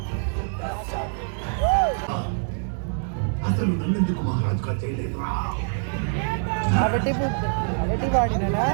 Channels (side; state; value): left; silent; 62 dB below the other